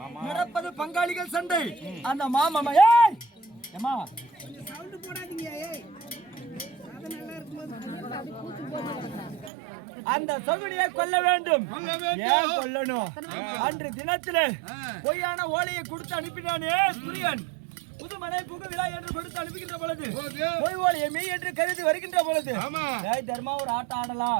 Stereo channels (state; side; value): drops out; left; at 9.5 s